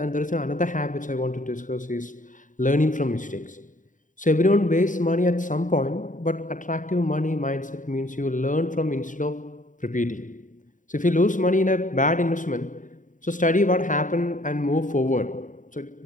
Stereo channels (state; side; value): late; right; 0.38 ms